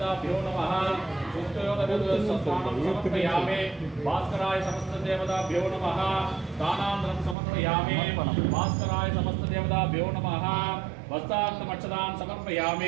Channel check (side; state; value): left; drops out; at 7.4 s